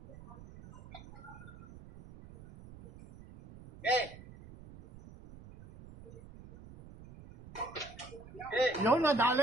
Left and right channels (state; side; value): noise; right; rumble, 18 dB below the sound